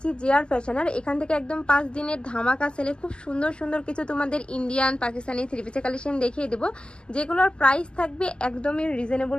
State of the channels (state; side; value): late; right; 0.049 ms